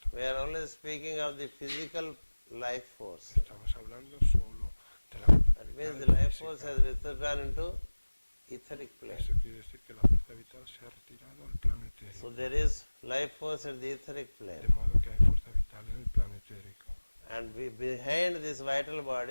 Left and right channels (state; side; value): inverted; both; correlation -1.00